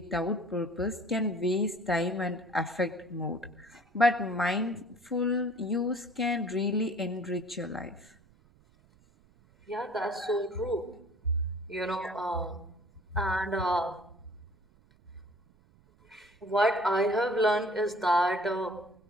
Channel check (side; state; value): right; noise; rumble, 30 dB below the sound